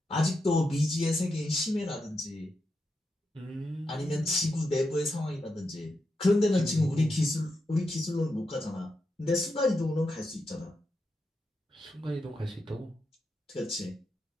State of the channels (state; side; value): normal; both; correlation 0.86